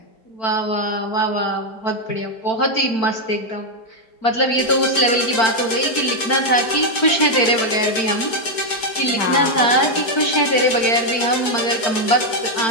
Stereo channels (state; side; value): late; right; 4.5 ms